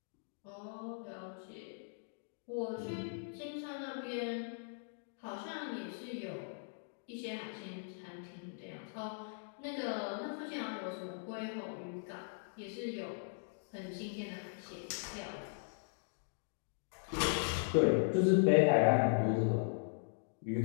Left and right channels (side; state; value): right; silent; digital silence